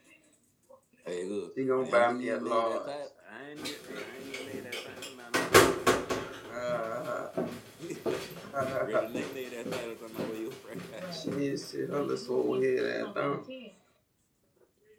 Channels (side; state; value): both; identical; correlation 1.00